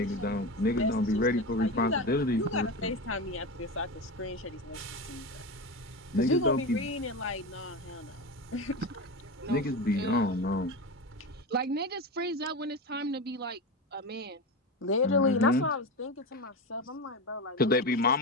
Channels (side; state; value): both; normal; correlation 0.22